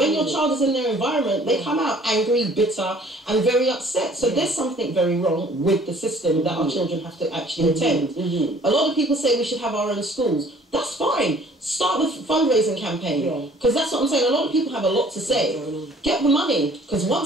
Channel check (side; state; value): both; normal; correlation 0.55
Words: your child is in their environment, they come out angry, bitter, and very upset. So there's something very wrong with the system that our children have to actually attend. A lot of people say we should have our own schools. That's fine. Start the fundraising campaign. Because that's what I'm saying. A lot of people have a lot to say. Get the money. Because